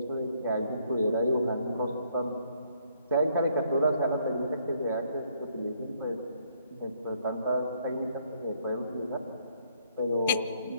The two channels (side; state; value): both; inverted; correlation -0.68